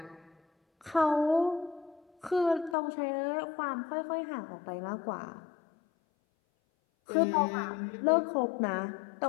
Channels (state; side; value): drops out; right; at 2.8 s